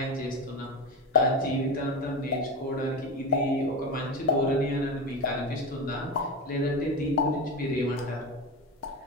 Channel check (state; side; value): normal; both; correlation 0.20